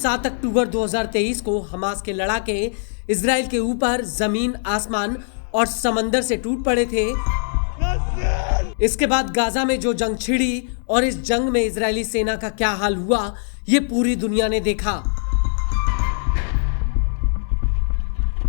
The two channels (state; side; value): silent; right; digital silence